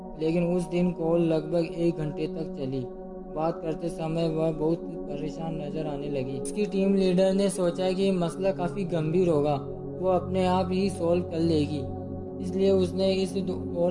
लेकिन उस दिन कॉल लगभग 1 घंटे तक चली। बात करते समय वह बहुत परेशान नजर आने लगी। उसकी टीम लीडर ने सोचा कि मसला काफ़ी गंभीर होगा, वो अपने आप ही सॉल्व कर लेगी, इसलिए उसने इस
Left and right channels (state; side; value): identical; both; correlation 1.00